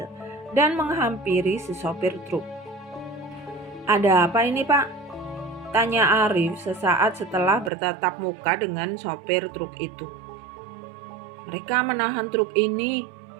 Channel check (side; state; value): left; drops out; at 7.7 s